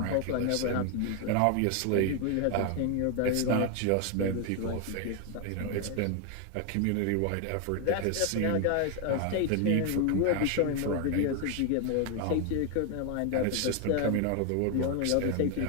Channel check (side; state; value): both; different; correlation 0.01